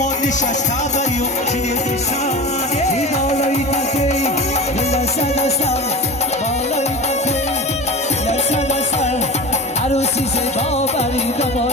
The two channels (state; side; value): normal; both; correlation 0.31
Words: نشسته بری و چیه پیسنده این بالای تته دل دسته دسته بالای تته دل دسته دسته عروسی زیبا بری